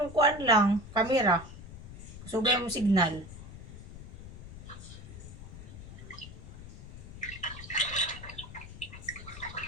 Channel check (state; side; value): noise; left; rumble, 13 dB below the sound